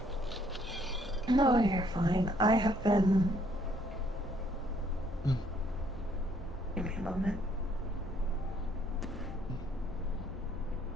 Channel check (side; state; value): both; normal; correlation 0.66